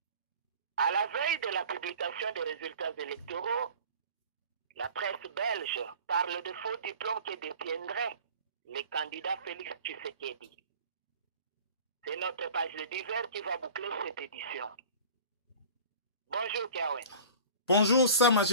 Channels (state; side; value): inverted; both; correlation -0.42